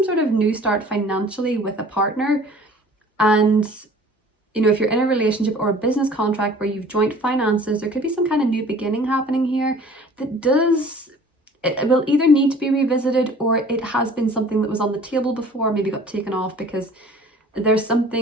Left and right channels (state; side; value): normal; both; correlation 0.48